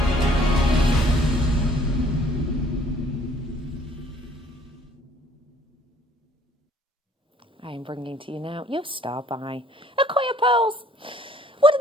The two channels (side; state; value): both; normal; correlation 0.59